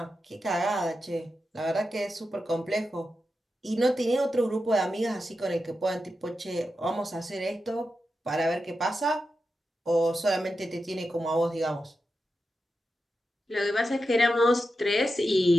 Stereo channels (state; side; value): normal; both; correlation 0.89